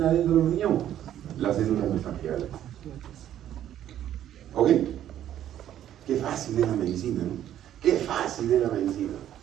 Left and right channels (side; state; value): left; quieter; 11.3 dB